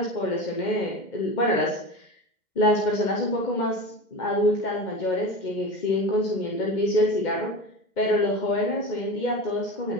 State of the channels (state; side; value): late; right; 2.1 ms